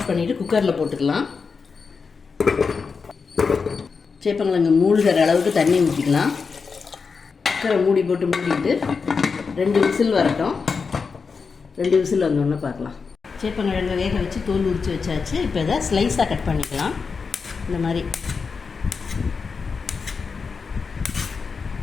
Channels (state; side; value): quieter; right; 5.2 dB